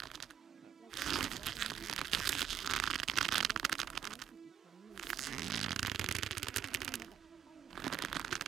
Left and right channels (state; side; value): quieter; left; 8.9 dB